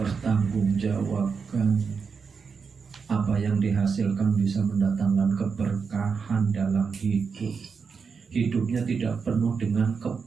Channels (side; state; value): left; quieter; 5.6 dB